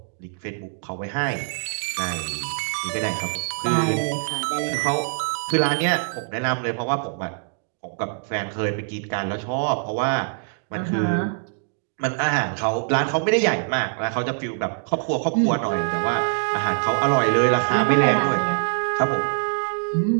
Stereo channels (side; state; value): left; silent; digital silence